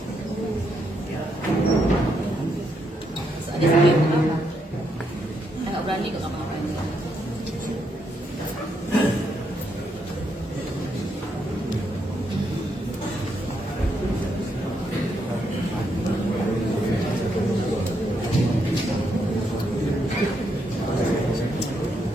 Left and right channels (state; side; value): normal; both; correlation 0.78